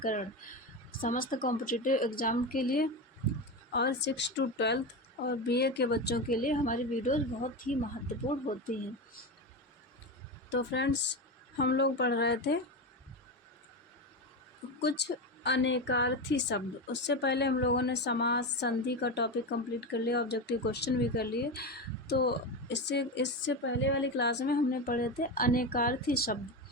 समस्त कॉम्पिटिटिव एग्ज़ाम के लिए और 6 to 12 और BA के बच्चों के लिए हमारी वीडियोज़ बहुत ही महत्वपूर्ण होती हैं। तो फ्रेंड्स, हम लोग पढ़ रहे थे कुछ अनेकार्थी शब्द। उससे पहले हम लोगों ने समास संधि का टॉपिक कंप्लीट कर लिया, ऑब्जेक्टिव क्वेश्चन भी कर लिए। तो इससे पहले वाली क्लास में हमने पढ़े थे अनेकार्थी शब्द।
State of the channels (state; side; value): normal; both; correlation 0.18